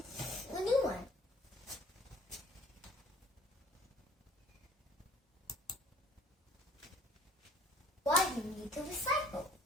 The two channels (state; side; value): normal; both; correlation 0.55